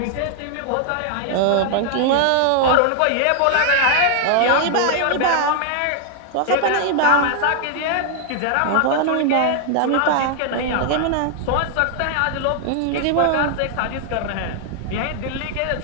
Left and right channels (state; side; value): different; both; correlation 0.00